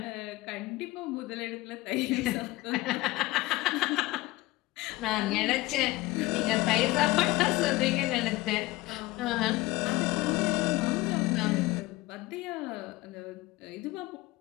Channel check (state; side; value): quieter; right; 19.6 dB